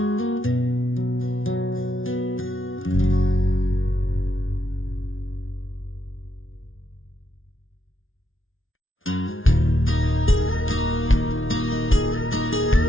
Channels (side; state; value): right; late; 0.58 ms